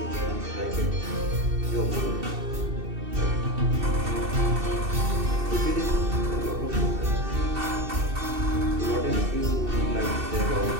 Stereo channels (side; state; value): left; late; 2.7 ms